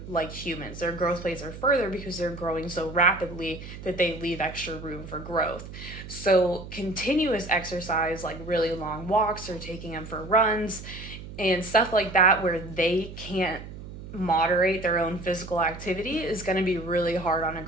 like humans. Their growth plates are further because they're growing so rapidly that they leave extra room for growth. So continuous exercise, like really long walks or taking them for runs and stuff like that where they can't moderate their own physical activity, is going to be really hard on a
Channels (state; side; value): noise; right; hum, 12 dB below the sound